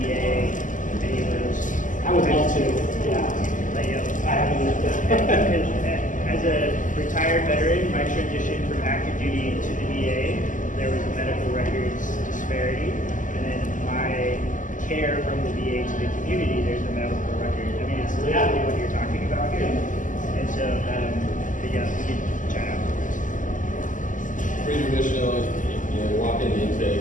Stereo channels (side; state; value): right; late; 0.37 ms